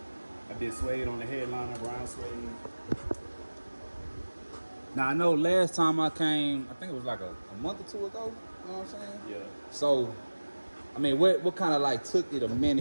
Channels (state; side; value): inverted; both; correlation -1.00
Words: did suede on the headliner, brown suede. Now, I know last time I came, I think it was like a month or two ago, you know what I'm saying? Yeah. So, I mean, what kind of like took it a